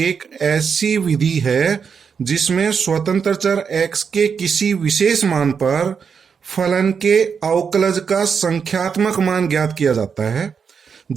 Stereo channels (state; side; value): quieter; left; 6.3 dB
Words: ऐसी विधि है जिसमें स्वतंत्र चर x के किसी विशेष मान पर फलन के अवकलज का संख्यात्मक मान ज्ञात किया जाता है,